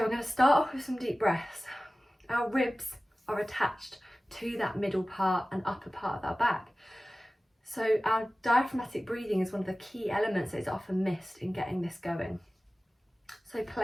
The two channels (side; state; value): both; normal; correlation 0.97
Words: going to start off with some deep breaths. Our ribs are attached to that middle part and upper part of our back. So our diaphragmatic breathing is one of the key elements that is often missed in getting this going. So